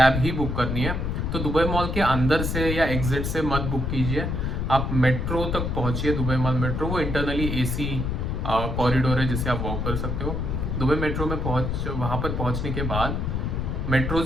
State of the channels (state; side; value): noise; left; rumble, 1 dB below the sound